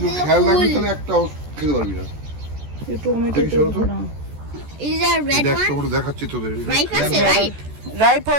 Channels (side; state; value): left; late; 14 ms